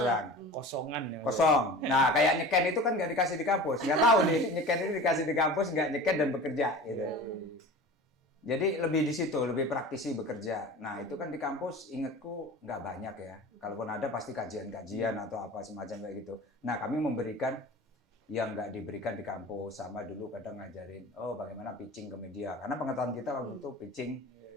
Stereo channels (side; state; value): both; normal; correlation 0.37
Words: Kosongan ya. Kosong. Nah, kayak nyeken itu kan nggak dikasih di kampus. Nggak tahu nih, nyeken itu dikasih di kampus, nggak nyeken dan bekerja gitu. Jadi lebih di situ, lebih praktisi bekerja. Nah itu kan di kampus ingatku nggak banyak ya. Kalaupun ada pasti kajian-kajian atau apa semacam kayak gitu. Nah kami memberikan yang nggak diberikan di kampus. Sama dulu kadang ngajarin, bagaimana pitching ke media. Karena pengetahuan kita waktu itu pitching